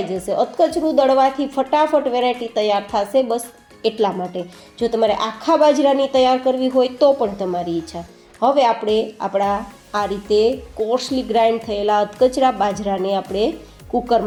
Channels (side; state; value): both; identical; correlation 1.00